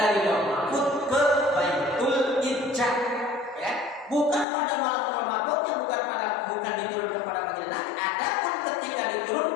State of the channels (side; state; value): right; drops out; at 4.5 s